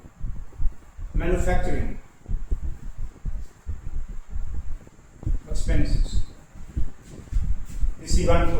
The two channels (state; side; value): identical; both; correlation 1.00